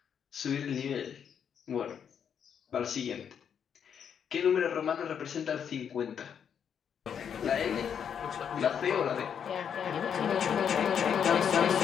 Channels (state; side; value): quieter; right; 7.9 dB